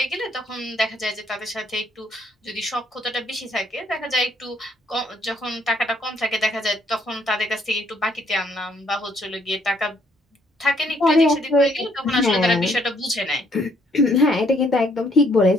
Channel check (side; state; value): both; normal; correlation 0.68